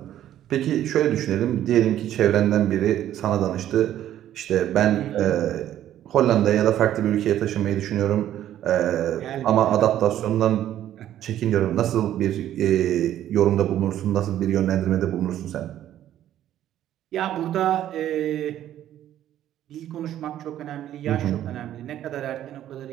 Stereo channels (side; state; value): left; quieter; 11.9 dB